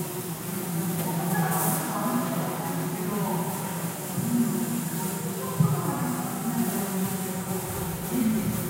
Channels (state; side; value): identical; both; correlation 1.00